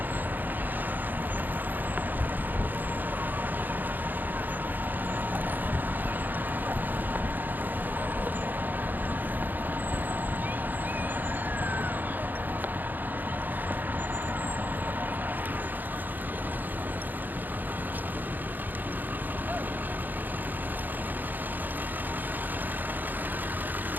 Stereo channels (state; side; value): late; left; 0.087 ms